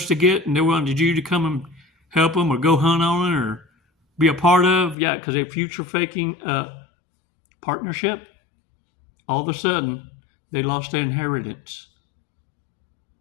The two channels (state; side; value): drops out; right; at 5.0 s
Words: to get and they wanted you to come and help them or go hunt on it or be a part of. Yeah, because they're future faking partnership. All of a sudden, they lost their inheritance.